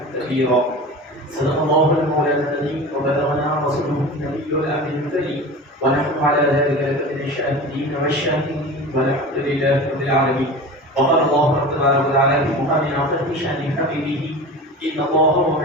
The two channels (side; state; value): both; normal; correlation 0.33